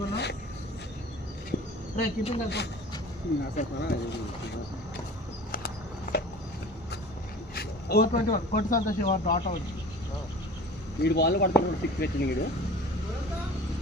రే కీపింగ్ కలిపో. ఓ 21 కొట్టు సంతోష్ డాట్ అవుట్. వీడు బాల్ పడుతున్నాడు 6 వచ్చింది వీడు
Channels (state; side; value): normal; both; correlation 0.42